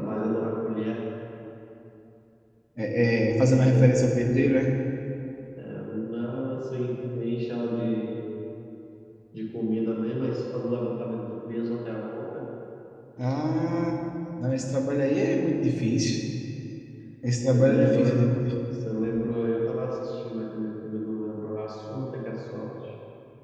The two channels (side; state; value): both; identical; correlation 1.00